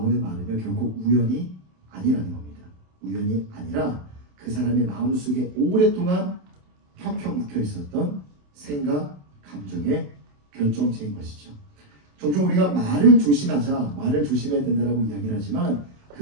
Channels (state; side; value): late; left; 27 ms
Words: 말은요, 결국 우연이 아니라는 겁니다. 우연이 아니라 그 사람의 마음속에 오랫동안 펴펴 묵혀 있었던 생각, 감정의 결정체인 것이죠. 종종 우리가 말을 조심하자, 말을 조심해야 된다고 이야기를 하지만